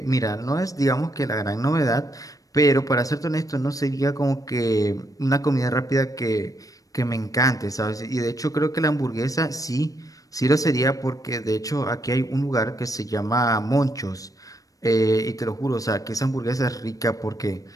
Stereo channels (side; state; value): right; late; 0.17 ms